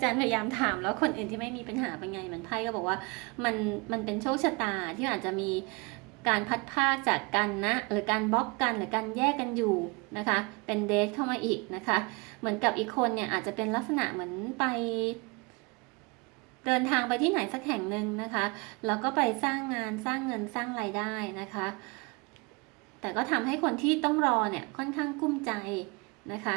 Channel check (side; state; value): left; quieter; 28.8 dB